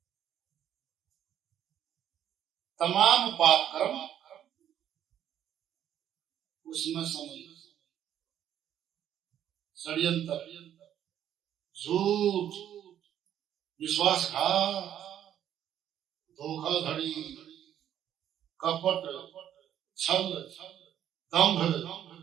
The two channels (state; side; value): quieter; left; 10.4 dB